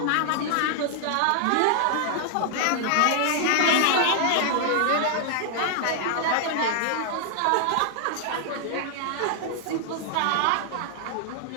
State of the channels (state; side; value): different; both; correlation 0.00